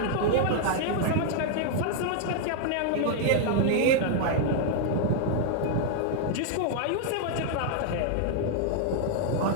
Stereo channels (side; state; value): both; different; correlation -0.01